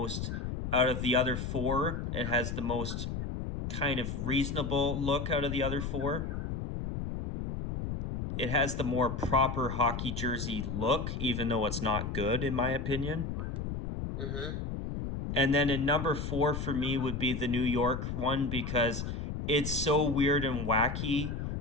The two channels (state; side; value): noise; left; rumble, 4 dB below the sound